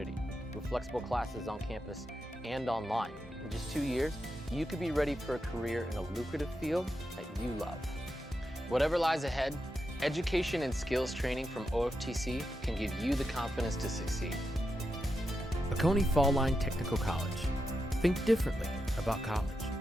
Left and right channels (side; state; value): both; normal; correlation 0.86